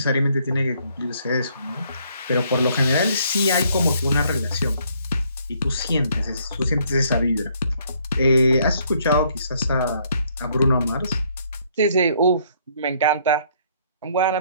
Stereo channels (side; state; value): both; inverted; correlation -0.66